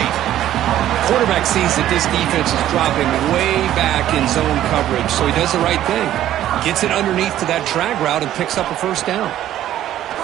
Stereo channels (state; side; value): quieter; left; 12.5 dB